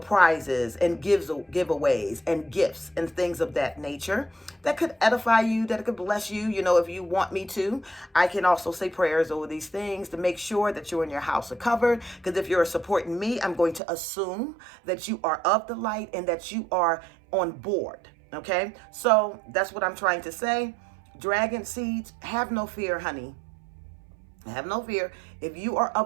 and giveaways and gifts and things of that nature that could edify you, that could bless you. If you want me to, I can also say prayers over these things to make sure that you and your house are covered. Because if you're supporting me, I'm going to assume that you are of the light and that you are on board. Okay, so that's what I'm trying to say. Dragon seeds, have no fear, honey. Have no fear. If you are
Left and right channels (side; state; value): left; drops out; at 13.8 s